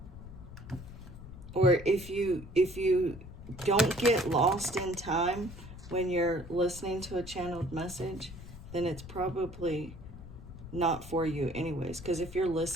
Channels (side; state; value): left; noise; rumble, 14 dB below the sound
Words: Or if you don't get lost in time when you're listening to a channeled message, then it's probably not for you anyways. Because if you're